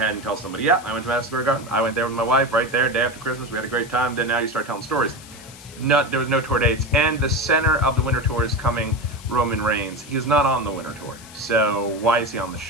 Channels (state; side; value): noise; left; hiss, 19 dB below the sound